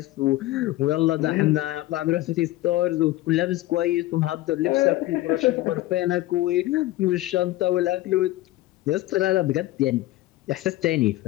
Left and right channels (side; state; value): right; quieter; 16.8 dB